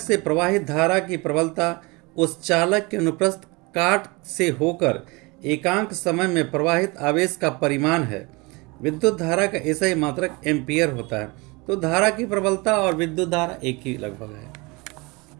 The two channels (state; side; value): quieter; left; 26.2 dB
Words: से प्रवाहित धारा की प्रबलता उस चालक के अनुप्रस्थ काट से होकर एकांक समय में प्रवाहित आवेश का परिमाण है। विद्युत धारा का ऐसा ही मात्रक एम्पियर होता है। तो धारा की प्रबलता और विद्युत धारा एक ही लगभग है।